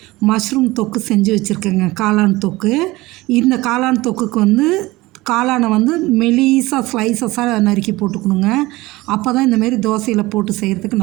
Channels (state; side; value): quieter; left; 20.0 dB